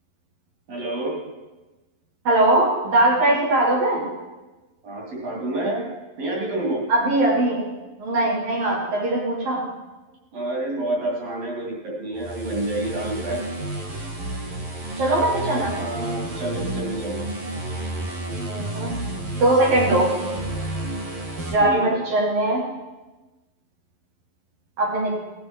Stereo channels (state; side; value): late; left; 11 ms